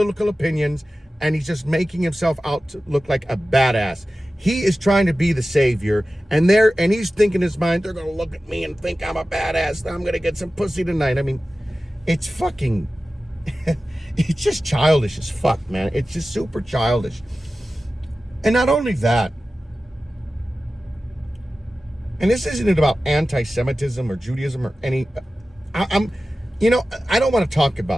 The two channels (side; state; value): both; normal; correlation 0.95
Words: opinions, and he's just making himself out to look like a badass. He is trying to be the savior, and he's thinking in his mind, they're going to look at me and think I'm a badass. I'm going to get some pussy tonight. I mean, it's fucking, it's just childish as fuck, man. It's just super childish. And not only that, and this isn't about anti-Semitism or Judaism or any, I don't want to talk